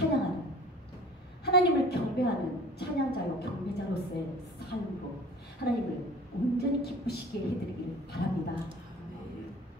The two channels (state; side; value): normal; both; correlation 0.45